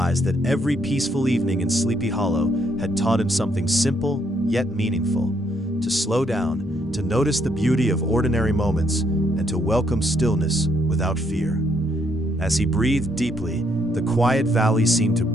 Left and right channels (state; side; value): normal; both; correlation 0.72